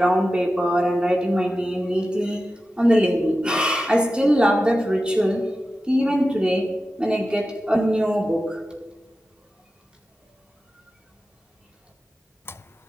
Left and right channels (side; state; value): both; normal; correlation 0.93